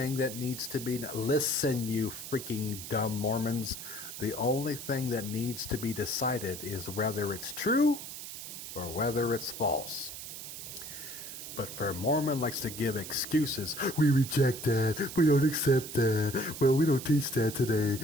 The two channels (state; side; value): noise; right; hiss, 10 dB below the sound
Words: that needs to be... Listen, you freaking dumb Mormons. The only thing that needs to be decided is whether it's true or whether it's false. But Fairmormon likes to give excuses. We reject that. We don't accept that. Well, we don't teach that today.